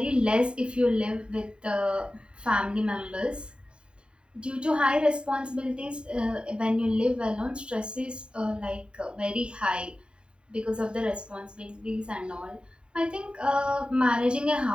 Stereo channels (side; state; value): left; late; 0.052 ms